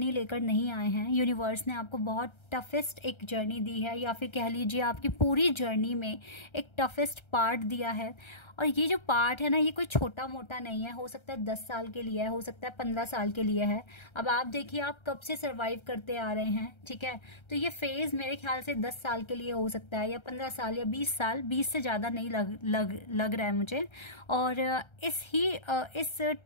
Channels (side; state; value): right; late; 1.3 ms